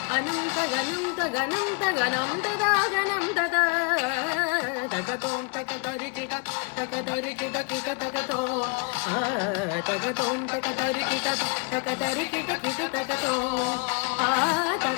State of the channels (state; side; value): quieter; right; 34.1 dB